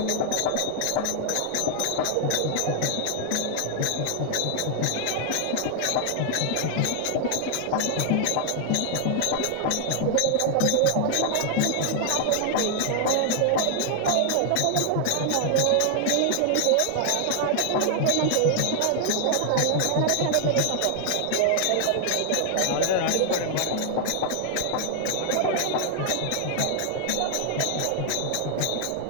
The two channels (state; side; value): different; both; correlation 0.00